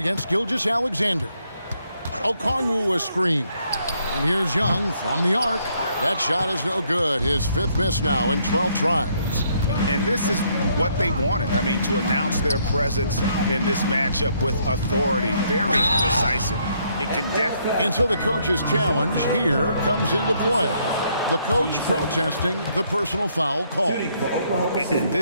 Gilgeous-Alexander. Okongwu a screen. And here's Young from the arc. That shot is no good. His 5th miss now in 12 tries. And this is what they wanted. I mean, to announce their presence in this matchup with authority. Very decisive. It can definitely... And so the coach's challenge here comes into play. The coach protesting the personal foul call. And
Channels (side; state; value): both; inverted; correlation -0.71